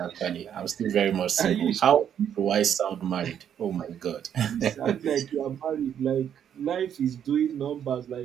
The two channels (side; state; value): left; quieter; 9.2 dB